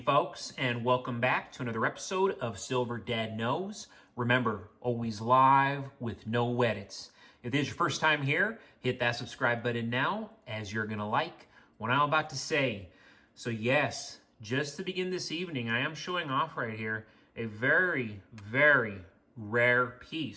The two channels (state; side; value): identical; both; correlation 1.00